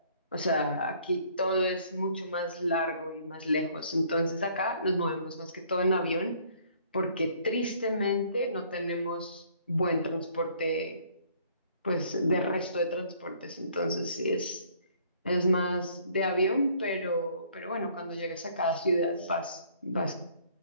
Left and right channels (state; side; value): inverted; both; correlation -0.60